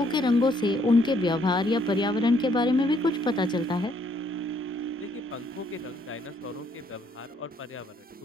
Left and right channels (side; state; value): both; normal; correlation 0.68